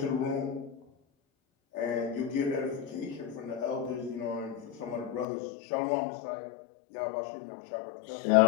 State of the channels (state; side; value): drops out; right; at 5.2 s